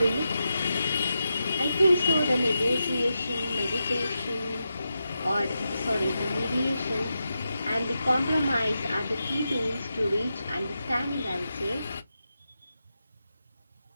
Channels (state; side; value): inverted; both; correlation -0.88